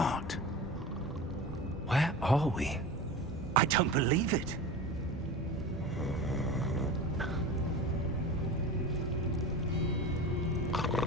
Where are we? I don't believe it.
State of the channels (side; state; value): both; normal; correlation 0.31